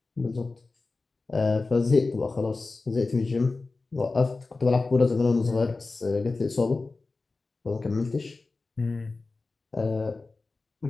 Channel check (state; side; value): quieter; right; 3.7 dB